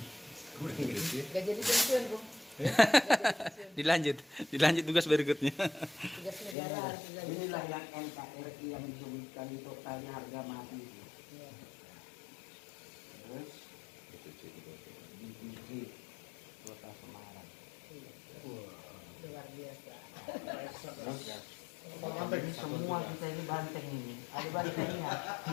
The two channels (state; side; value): drops out; right; at 6.6 s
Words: Gak jadi pensiun bu. Dilanjut tugas berikutnya. Tugas negara. Inilah yang NKRI yang disebutkan di totalnya harga mati. Terus DPC Kota Semarang. Luar biasa. Ini semua kita ini banteng ini. Ada bantengnya.